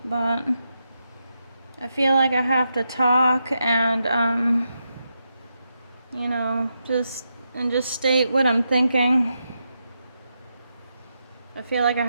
but I feel like I have to talk and just state what I'm thinking. I feel like I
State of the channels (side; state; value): both; inverted; correlation -0.85